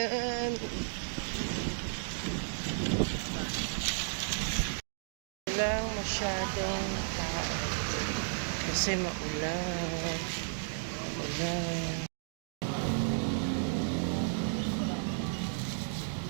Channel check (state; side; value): silent; left; digital silence